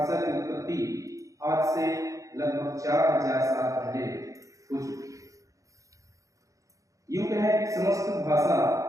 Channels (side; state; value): left; late; 0.16 ms